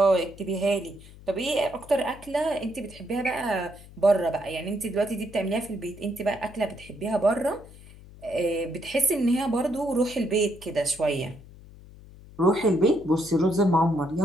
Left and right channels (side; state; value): left; noise; hum, 20 dB below the sound